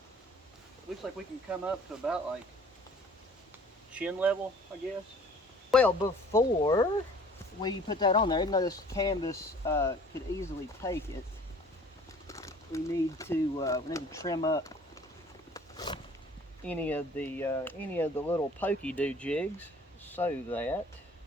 looks like we can come up to about like chin level, I guess. Well, before we put that on there, even though this canvas could easily take it, we need to trim up any of the little pokey do jigs so that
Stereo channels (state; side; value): normal; both; correlation 0.51